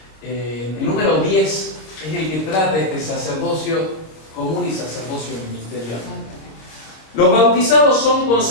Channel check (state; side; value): late; right; 26 ms